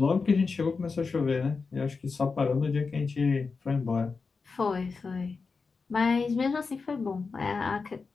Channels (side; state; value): right; quieter; 4.7 dB